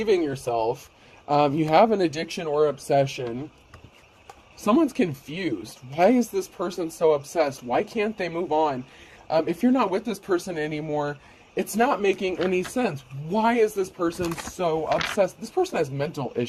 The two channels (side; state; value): both; identical; correlation 1.00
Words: yourself. You have an addiction or obsession. Someone's confused. Why is this person so obsessed? Why can't they move on? If you're not with this person anymore, it's not making any sense. Why is this person so obsessed? This person has mental